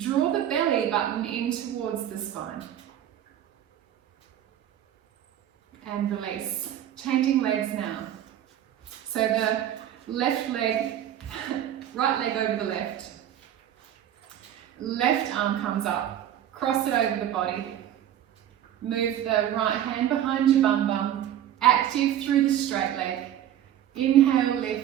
the belly button in towards the spine. And release. Changing legs now. So the left leg, right leg over the left. Left arm comes up. Cross it over the body. Move the right hand behind your bum bum. Active through the straight leg. Inhale,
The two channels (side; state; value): left; quieter; 11.1 dB